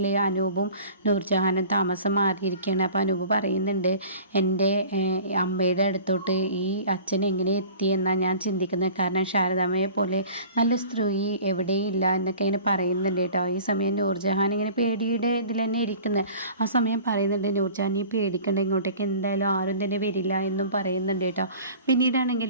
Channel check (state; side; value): inverted; both; correlation -0.44